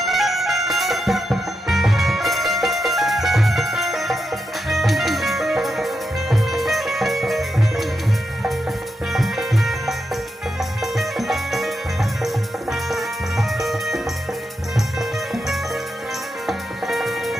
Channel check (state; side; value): normal; both; correlation 0.86